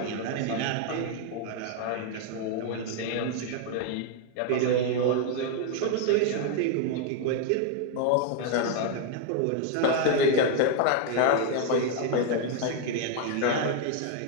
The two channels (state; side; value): different; both; correlation 0.01